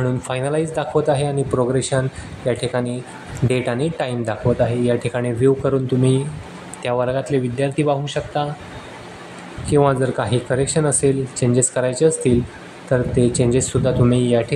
फायनलाइज दाखवत आहे आणि प्रोग्रेशन या ठिकाणी डेट आणि टाईम दाखवत आहे. या ठिकाणी व्ह्यू करून तुम्ही त्या वर्गातले विद्यार्थी पाहू शकता किंवा जर काही करेक्शन असेल, चेंजेस करायचे असतील तर ते चेंजेससुद्धा तुम्ही या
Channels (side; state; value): both; identical; correlation 1.00